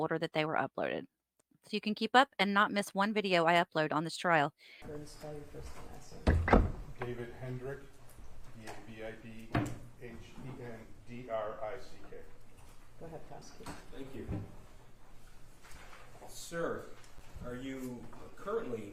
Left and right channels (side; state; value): both; identical; correlation 1.00